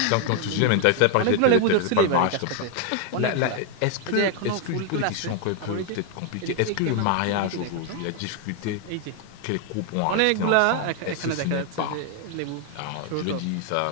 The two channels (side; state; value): both; different; correlation 0.00